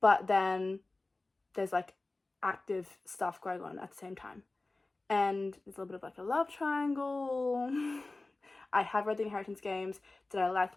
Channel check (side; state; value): right; quieter; 3.2 dB